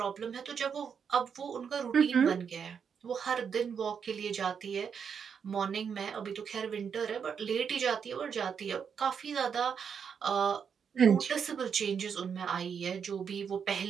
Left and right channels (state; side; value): quieter; left; 6.9 dB